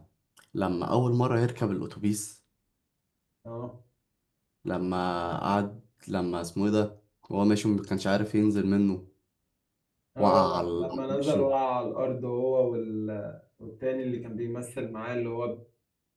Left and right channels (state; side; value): identical; both; correlation 1.00